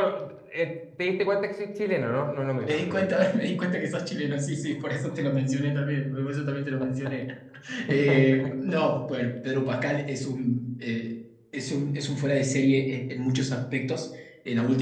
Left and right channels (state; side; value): identical; both; correlation 1.00